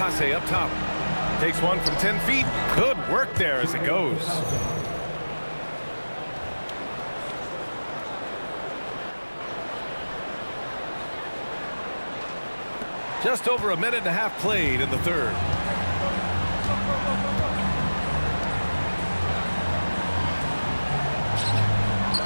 up top. Takes one from 10 feet. Good work there as it goes. Just over a minute and a half played in the third.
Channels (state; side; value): inverted; both; correlation -1.00